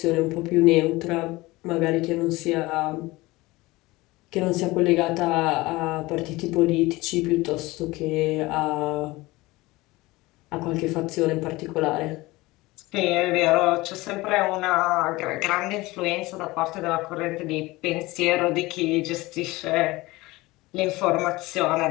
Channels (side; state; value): right; quieter; 20.7 dB